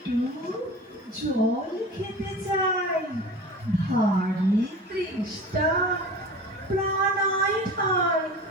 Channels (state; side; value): normal; both; correlation 0.36